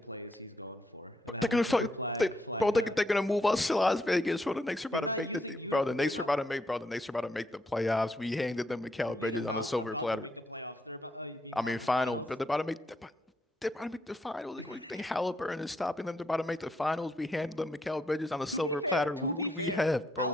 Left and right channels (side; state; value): both; normal; correlation 0.76